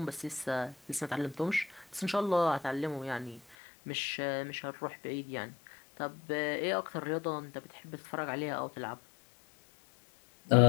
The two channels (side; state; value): right; drops out; at 3.6 s